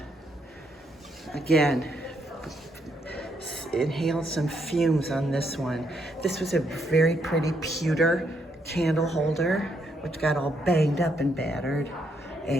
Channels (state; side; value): normal; both; correlation 0.75